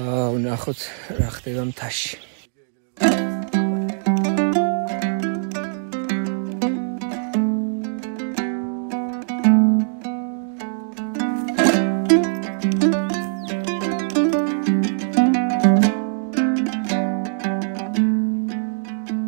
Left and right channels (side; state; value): left; silent; digital silence